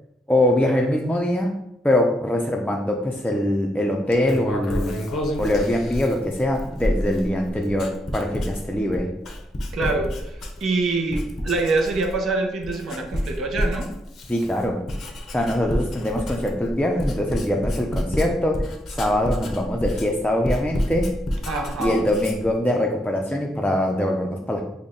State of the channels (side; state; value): both; normal; correlation 0.77